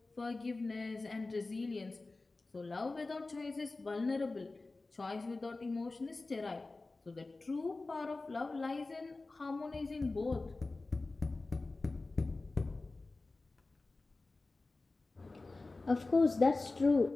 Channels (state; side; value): quieter; right; 3.4 dB